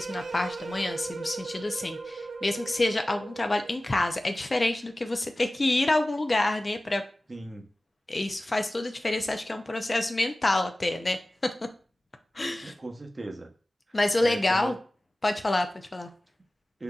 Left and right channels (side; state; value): both; normal; correlation 0.97